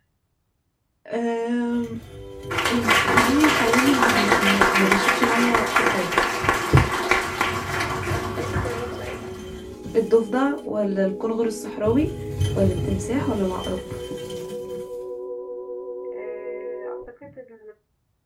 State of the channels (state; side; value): identical; both; correlation 1.00